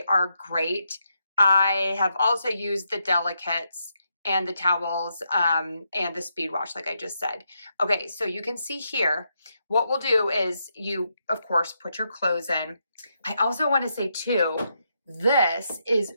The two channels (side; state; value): both; inverted; correlation -0.82